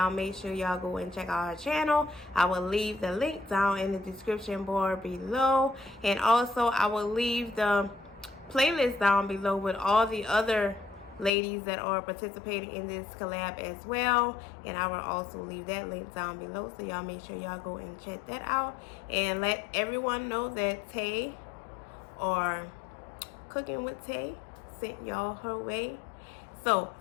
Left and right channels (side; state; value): right; drops out; at 11.3 s